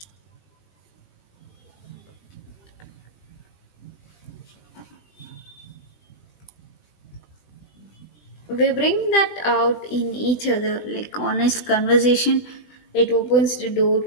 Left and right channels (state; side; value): late; right; 20 ms